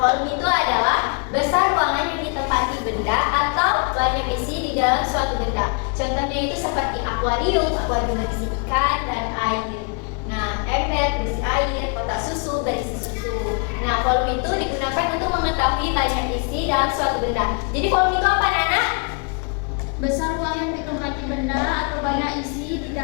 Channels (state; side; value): quieter; right; 35.7 dB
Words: itu adalah besar ruangan yang ditempati benda atau banyak isi di dalam suatu benda. Contohnya itu seperti akuarium berisi ikan dan air. Nah, ember berisi air, kotak susu berisi susu. Nah, volume itu digunakan untuk mengetahui banyak isi dalam suatu benda. Jadi volume itu apa, anak? Besar ruang yang ditempati benda atau banyak isi di